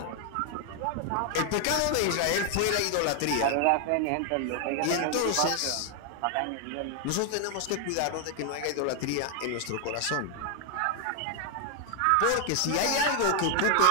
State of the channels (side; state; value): both; different; correlation 0.00